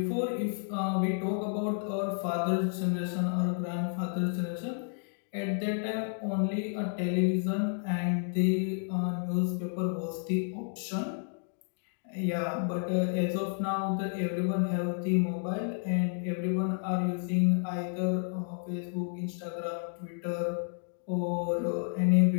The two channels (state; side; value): silent; right; 57 dB below the other